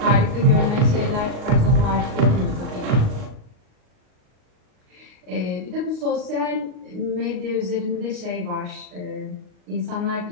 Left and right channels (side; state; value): left; late; 38 ms